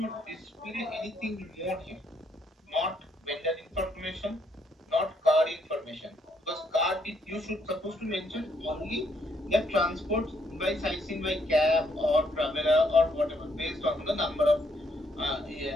display anything more here. Not vendor information, not card information. Because card you should supposed to mention only the transport by sightseeing by cab or traveler or whatever based on the number of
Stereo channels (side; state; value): both; normal; correlation 0.72